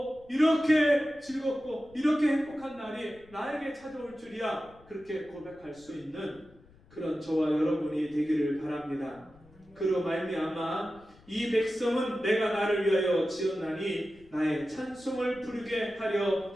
이렇게 즐겁고 이렇게 행복한 날이 나에게 찾아올 줄이야 그렇게 고백할 수 있는 그런 저와 여러분이 되기를 바랍니다. 그로 말미암아 이 백성은 내가 나를 위하여 지었나니 나의 찬송을 부르게 하려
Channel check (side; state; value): left; noise; rumble, 26 dB below the sound